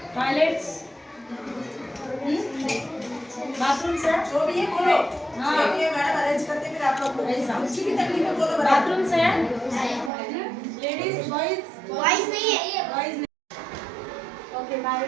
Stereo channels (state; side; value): drops out; left; at 10.1 s